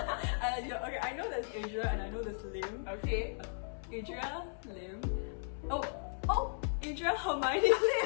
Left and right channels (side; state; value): right; silent; 54 dB below the other